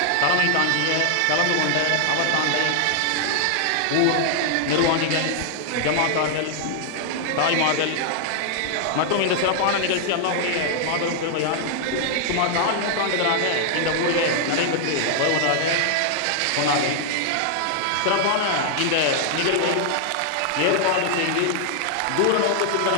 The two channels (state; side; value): different; both; correlation 0.00